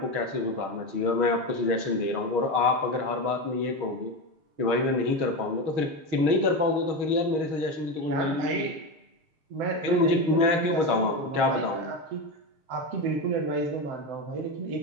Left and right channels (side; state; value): left; late; 6.4 ms